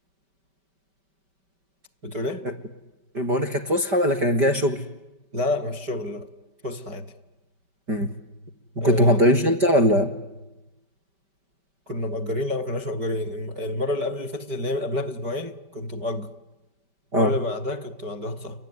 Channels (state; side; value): late; left; 5.1 ms